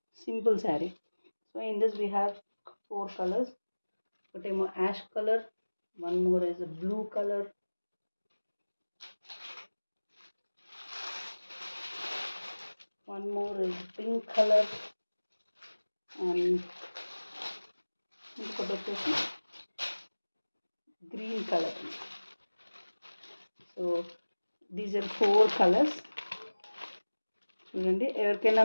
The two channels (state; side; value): inverted; both; correlation -1.00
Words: Simple saree. So in this we have 4 colours. ఒకటేమో ash colour, one more is blue colour, one more is pink color, and ఇంకొకటి వచ్చేసి green colour. So these are 4 colours. చూడండి, ఎవరికైనా